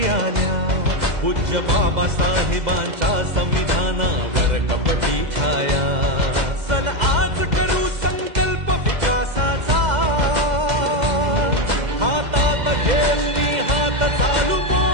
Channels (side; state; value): left; late; 2.0 ms